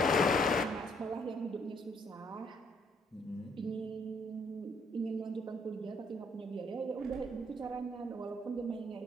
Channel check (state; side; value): normal; both; correlation 0.67